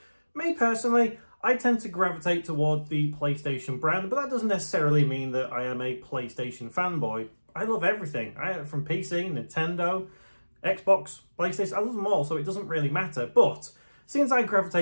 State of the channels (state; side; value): inverted; both; correlation -1.00